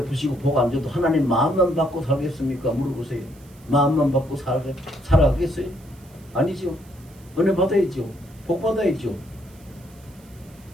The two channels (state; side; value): noise; right; hiss, 27 dB below the sound